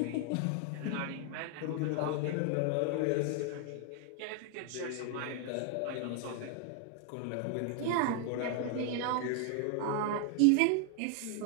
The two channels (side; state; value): both; different; correlation 0.00